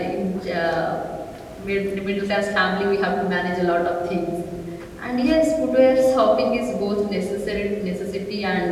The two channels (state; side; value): identical; both; correlation 1.00